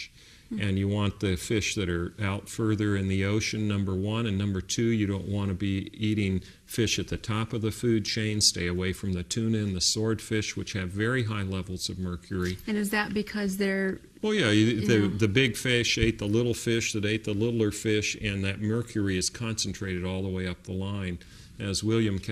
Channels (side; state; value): both; identical; correlation 1.00